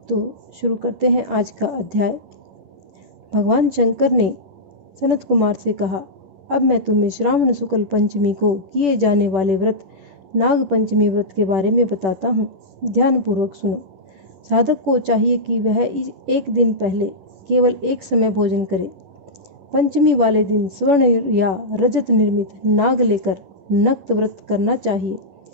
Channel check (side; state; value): left; late; 10 ms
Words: तो शुरू करते हैं आज का अध्याय। भगवान शंकर ने सनत कुमार से कहा, अब मैं तुम्हें श्रावण शुक्ल पंचमी को किए जाने वाले व्रत नाग पंचमी व्रत के बारे में बताता हूँ। ध्यानपूर्वक सुनो। साधक को चाहिए कि वह एक दिन पहले केवल एक समय भोजन करे। पंचमी वाले दिन स्वर्ण या रजत निर्मित नाग लेकर नक्त व्रत करना चाहिए।